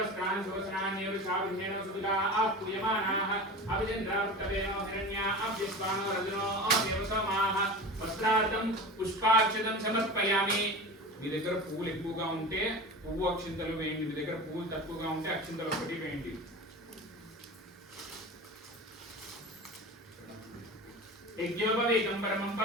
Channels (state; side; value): normal; both; correlation 0.31